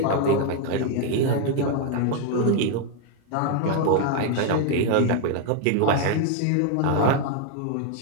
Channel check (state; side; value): different; both; correlation 0.01